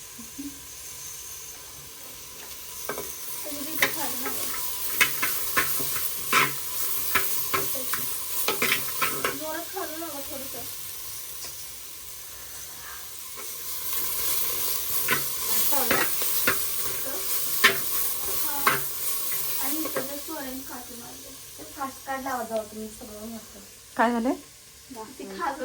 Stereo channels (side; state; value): both; identical; correlation 1.00